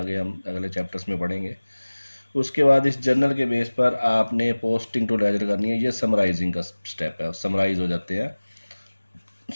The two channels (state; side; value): inverted; both; correlation -1.00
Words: हम अगले चैप्टर्स में पढ़ेंगे। उसके बाद इस जर्नल के बेस पर आपने पोस्टिंग टू लेजर करनी है, ये समराइजिंग का स्टेप है, समराइज हो जाते हैं।